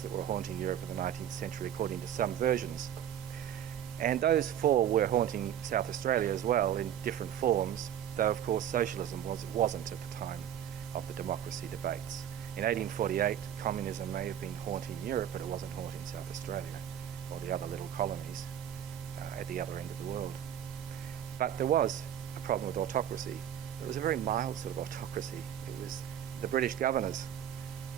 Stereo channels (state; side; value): quieter; left; 10.2 dB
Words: that were haunting Europe in the 19th century, according to some versions. And those four were haunting South Australia as well in different forms, though, of course, socialism wasn't at the time of the democracy debates. In 1848, communism may have been haunting Europe, but it wasn't haunting South Australia or the other little colonies at the other end of the world. But there was a problem with autocracy. It was a very mild sort of autocracy. It was the British governors.